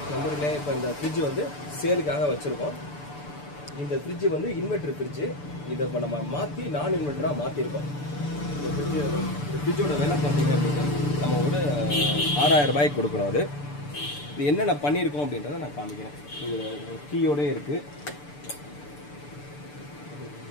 கம்பெனிலே இப்போ இந்த ஃப்ரிட்ஜ் வந்து சேலுக்காக வச்சுருக்கோம். இந்த ஃப்ரிட்ஜ் வந்து இன்வெர்டர் ஃப்ரிட்ஜு. இதை இப்போ நம்ம மாற்றி நான் இன்வெர்டராக மாற்றிருக்கோம். இந்த ஃப்ரிட்ஜோட விலை பார்த்தீங்க அப்படின்னா நம்ம ஒரு 6000 ரூபாய்க்கு கொடுக்குறோம். அது இது என்னென்ன பண்ணியிருக்கோம் அப்படின்றத நான் காமிக்கிறேன். இது கீயோடே இருக்குது,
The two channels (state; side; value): late; right; 6.8 ms